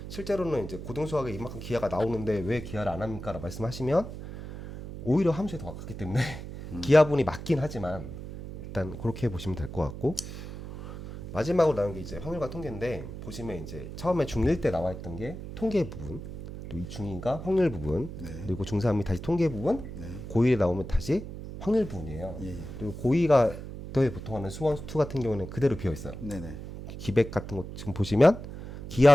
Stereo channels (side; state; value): right; noise; hum, 10 dB below the sound